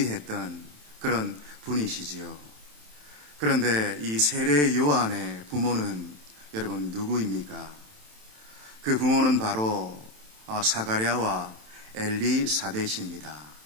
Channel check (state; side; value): late; left; 27 ms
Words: 그런 분이시지요. 그런데 이 세례 요한의 부모는 여러분 누구입니까? 그 부모는 바로 사가랴와 엘리사벳입니다.